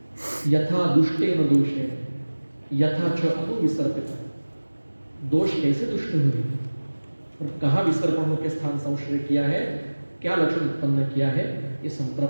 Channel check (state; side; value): inverted; both; correlation -1.00